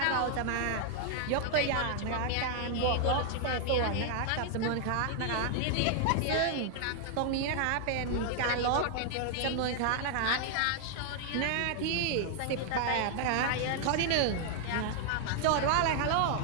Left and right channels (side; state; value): both; different; correlation 0.00